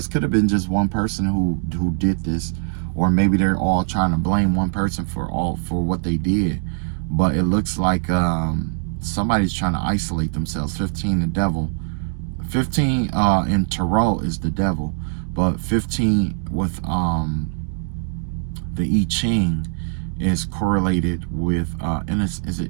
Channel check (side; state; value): left; silent; digital silence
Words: could have been just one person who did this, or maybe they're all trying to blame one person for what they did. But it looks like somebody's trying to isolate themselves. 15, the devil. 15 in tarot is the devil, but 15 with the I Ching is correlated with is